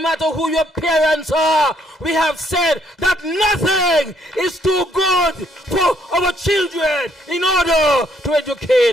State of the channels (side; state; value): both; normal; correlation 0.69